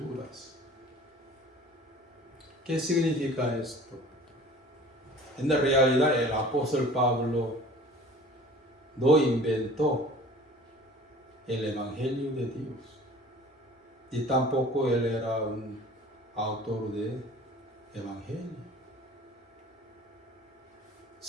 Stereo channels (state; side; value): normal; both; correlation 0.45